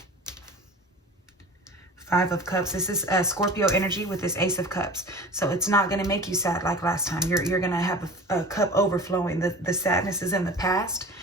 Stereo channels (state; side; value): normal; both; correlation 0.38